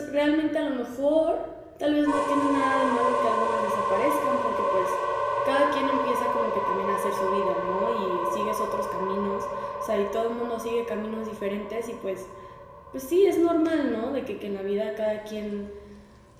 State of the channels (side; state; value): both; identical; correlation 1.00